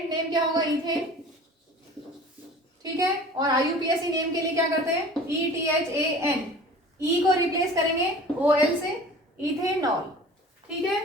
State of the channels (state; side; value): normal; both; correlation 0.42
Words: नेम क्या होगा, इथेन। ठीक है, और IUPAC नेम के लिए क्या करते हैं, ETHAN, E को रिप्लेस करेंगे OL से, इथेनॉल। ठीक